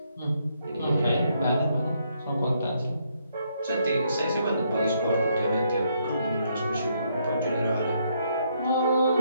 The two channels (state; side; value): inverted; both; correlation -0.74